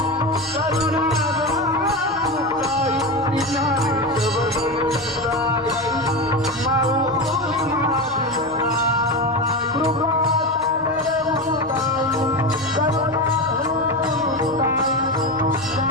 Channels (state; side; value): normal; both; correlation 0.20